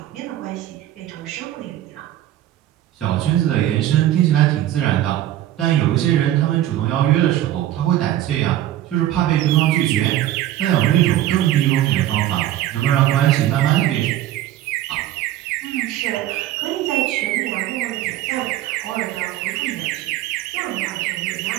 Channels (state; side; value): quieter; left; 13.1 dB